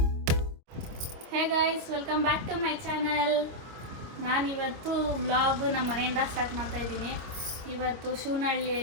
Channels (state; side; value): late; left; 26 ms